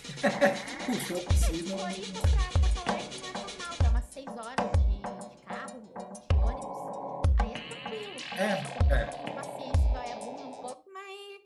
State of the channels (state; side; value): identical; both; correlation 1.00